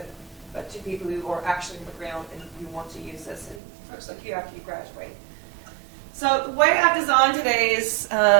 but to people who are actually on the ground and who want to use this, and folks like you after you graduate. So the way I've designed today's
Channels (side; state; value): left; drops out; at 3.6 s